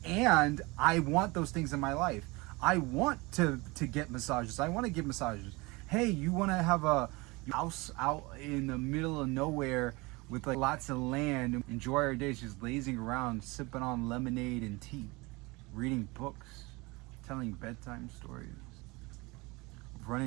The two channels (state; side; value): quieter; left; 24.6 dB